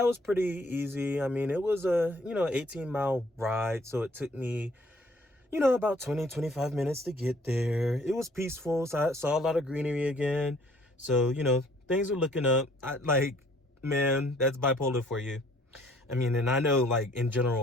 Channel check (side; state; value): both; normal; correlation 0.60